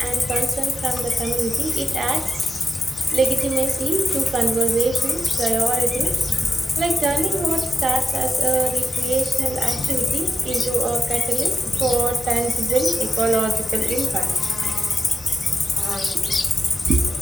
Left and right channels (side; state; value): both; normal; correlation 0.88